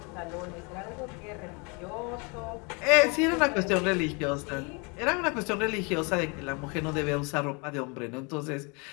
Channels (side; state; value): right; quieter; 31.6 dB